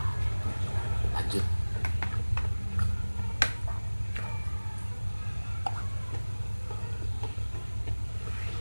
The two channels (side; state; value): both; inverted; correlation -1.00